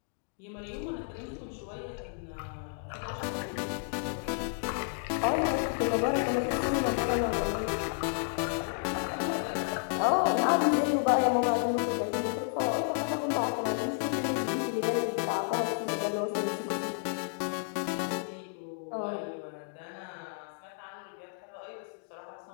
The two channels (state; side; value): silent; right; digital silence